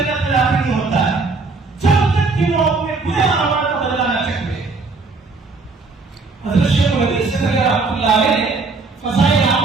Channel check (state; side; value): quieter; left; 4.0 dB